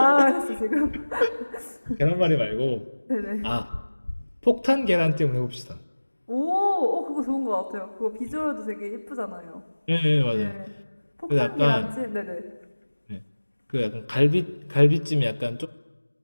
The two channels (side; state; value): both; inverted; correlation -1.00